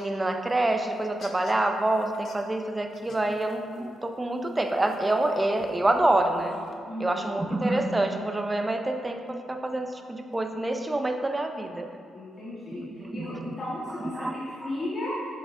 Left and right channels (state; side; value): normal; both; correlation 0.91